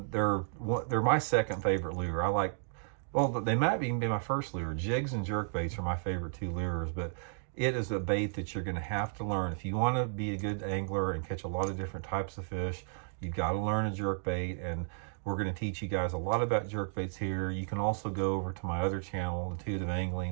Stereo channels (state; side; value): silent; left; digital silence